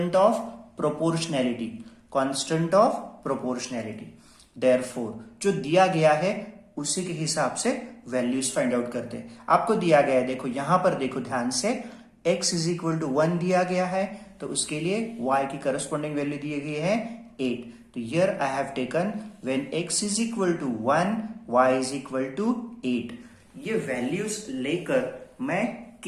of proportionality. Constant of proportionality. Therefore जो दिया गया है उसी के हिसाब से वैल्यूज फाइंड आउट करते हैं। आपको दिया गया है, देखो यहां पर देखो ध्यान से, x इज इक्वल टू 1 दिया गया है, तो उसके लिए y की करस्पॉन्डिंग वैल्यू दी गई है 8। तो here I have taken when x is equal to 1 y is equal to 8। ये वैल्यूज लेकर मैं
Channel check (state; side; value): identical; both; correlation 1.00